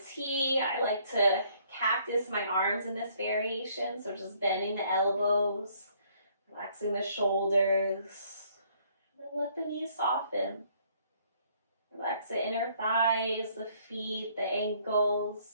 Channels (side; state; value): both; inverted; correlation -0.64